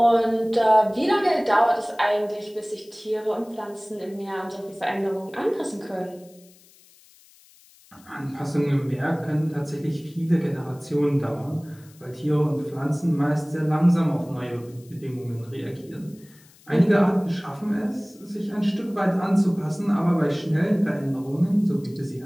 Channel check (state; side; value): noise; left; hiss, 27 dB below the sound